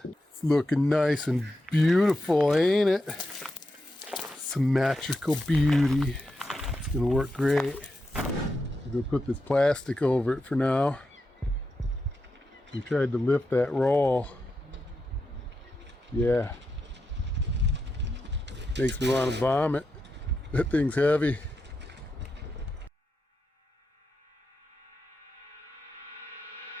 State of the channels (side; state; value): both; normal; correlation 0.87